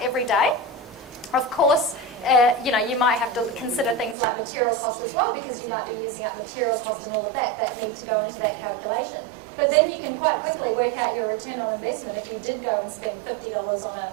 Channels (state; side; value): drops out; left; at 4.2 s